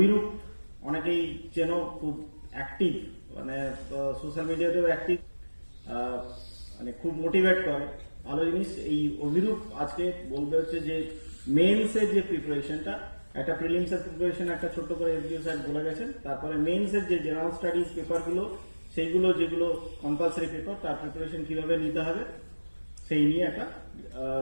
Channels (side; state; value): both; inverted; correlation -1.00